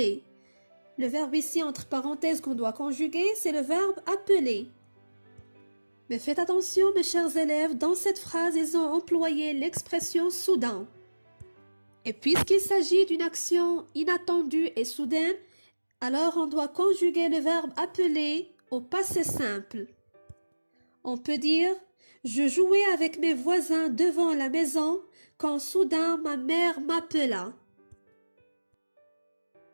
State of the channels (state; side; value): inverted; both; correlation -1.00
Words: Le verbe ici entre parenthèses qu'on doit conjuguer, c'est le verbe appeler. Mais faites attention mes chers élèves, dans cette phrase, ils ont employé l'expression soudain. Et puisqu'il s'agit d'une action inattendue et soudaine, alors on doit conjuguer le verbe appeler au passé simple. On peut dire « Je jouais avec mes voisins devant la maison quand soudain ma mère m'appela ».